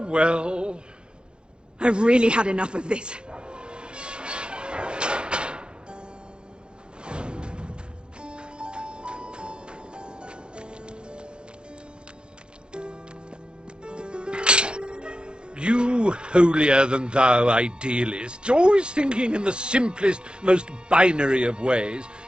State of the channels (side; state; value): left; late; 0.051 ms